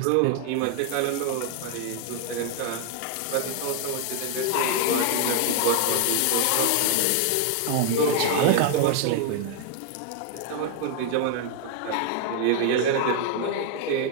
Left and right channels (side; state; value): both; different; correlation 0.00